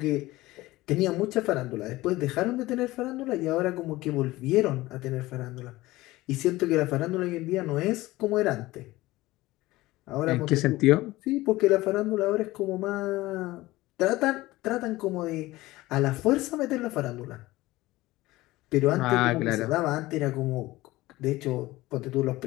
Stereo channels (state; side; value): quieter; right; 18.6 dB